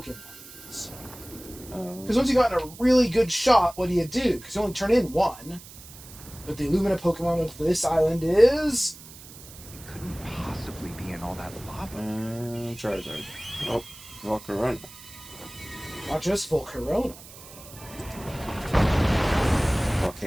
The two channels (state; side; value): noise; right; hiss, 18 dB below the sound